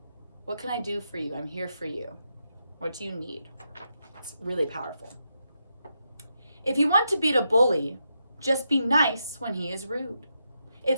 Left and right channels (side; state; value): both; inverted; correlation -0.83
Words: what can I do for you? I'm here for you. What do you need? It's really powerful. If you want to beat a bully, just be nice when he is rude.